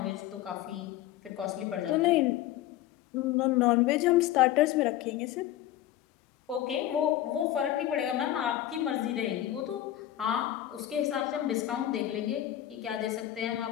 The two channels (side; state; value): right; quieter; 13.2 dB